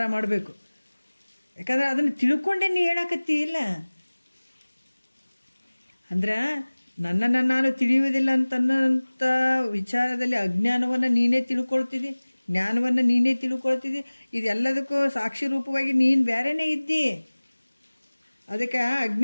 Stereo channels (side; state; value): both; inverted; correlation -1.00